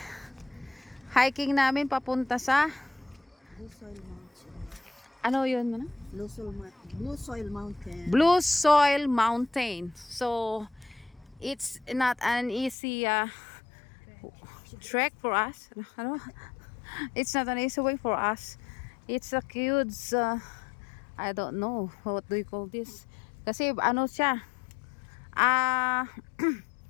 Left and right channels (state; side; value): drops out; right; at 12.8 s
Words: hiking namin papunta sa Blue Soil Mountain. ano yun? Ano? Blue Soil Mountain. Blue Soil Mountain. So it's not an easy trek for us. Ano? It's not an easy way for us. It's a huge I don't know what do you call this. Kasi ano siya?